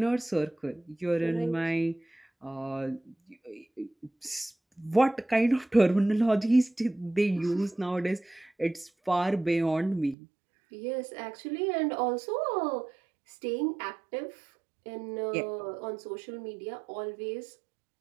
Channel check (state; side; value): drops out; left; at 10.2 s